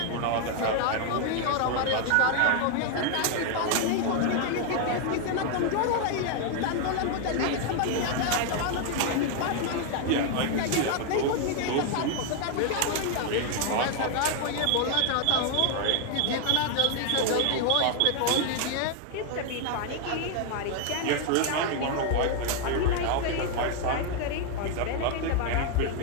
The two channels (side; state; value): both; different; correlation 0.00